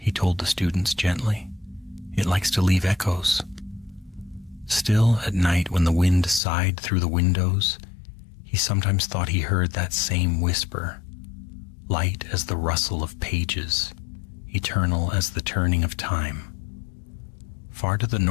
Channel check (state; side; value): drops out; right; at 6.4 s